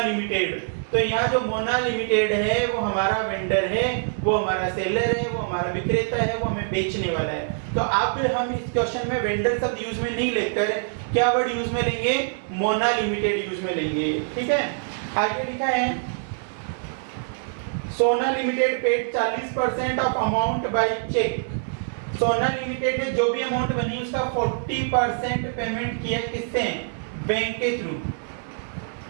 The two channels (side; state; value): left; silent; digital silence